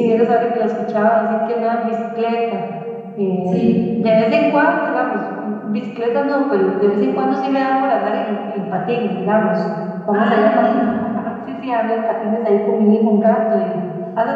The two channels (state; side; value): identical; both; correlation 1.00